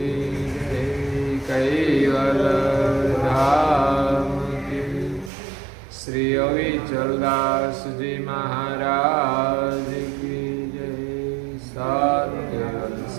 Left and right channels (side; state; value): left; drops out; at 5.3 s